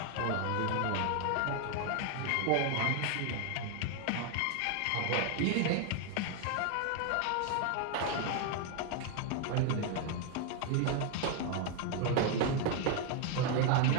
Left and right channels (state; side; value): different; both; correlation 0.01